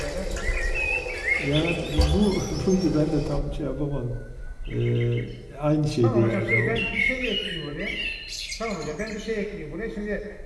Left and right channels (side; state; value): both; identical; correlation 1.00